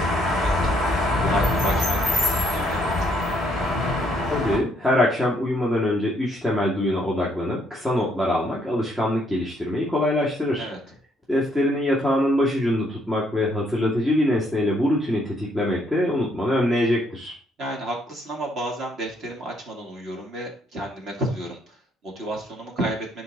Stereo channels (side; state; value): both; normal; correlation 0.69